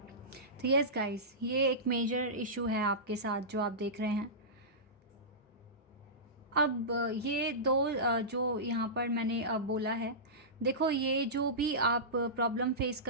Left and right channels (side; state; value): both; normal; correlation -0.18